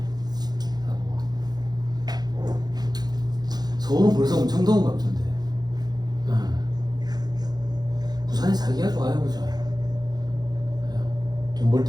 서울은 벌써 엄청 더운 것 같은데. 부산에 살기가 좋아요, 그죠? 돈 벌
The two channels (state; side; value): late; left; 0.19 ms